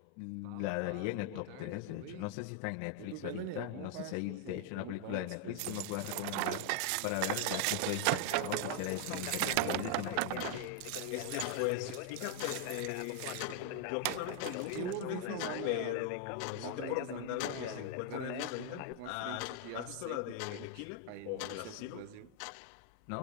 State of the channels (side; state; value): both; different; correlation 0.00